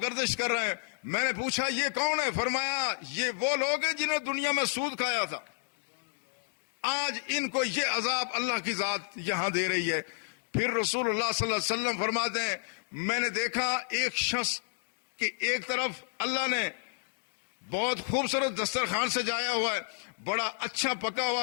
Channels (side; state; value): right; silent; digital silence